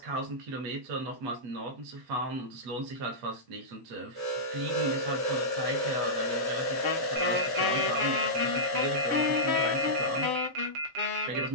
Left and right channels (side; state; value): left; late; 7.4 ms